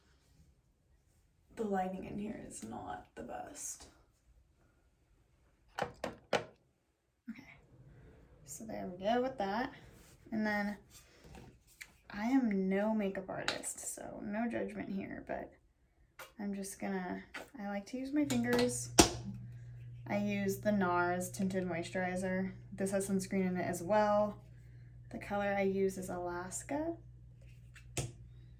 The lighting in here is not the best. So there we go with that. And then I am no makeup artist, so no judgment here, but I'm just gonna, I like to use my fingers. I use the Nars tinted moisturizer. This has sunscreen in it as well. The color I use is Alaska.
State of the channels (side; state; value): both; identical; correlation 1.00